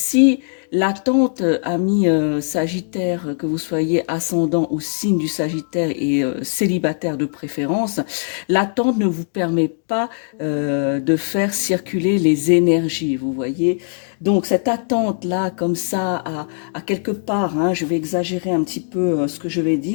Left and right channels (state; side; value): silent; right; digital silence